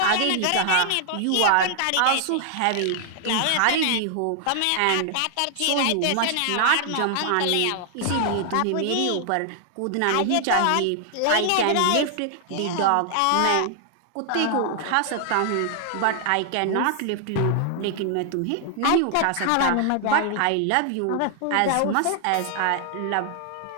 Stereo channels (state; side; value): different; both; correlation 0.00